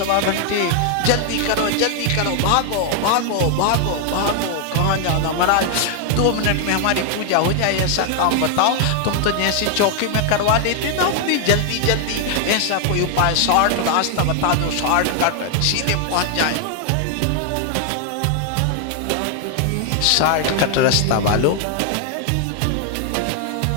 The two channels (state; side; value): different; both; correlation 0.00